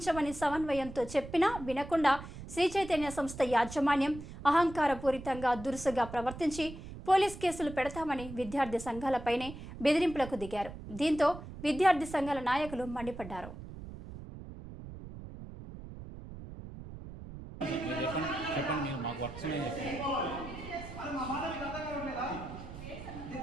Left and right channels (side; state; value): right; noise; rumble, 12 dB below the sound